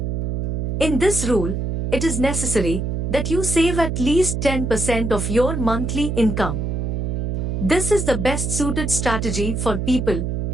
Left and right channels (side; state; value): right; noise; hum, 1 dB below the sound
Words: In this rule, it is necessary that you save at least 10% of your monthly income. This is the best suited strategy for people